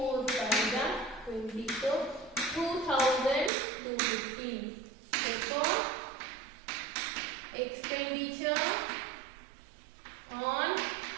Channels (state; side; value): drops out; left; at 3.5 s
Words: fives are 20. So 2,215. Therefore, expenditure on